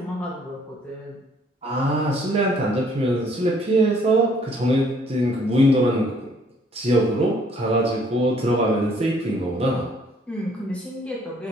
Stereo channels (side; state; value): both; normal; correlation 0.62